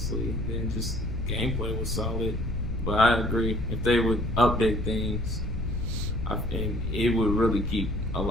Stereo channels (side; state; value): left; noise; rumble, 2 dB below the sound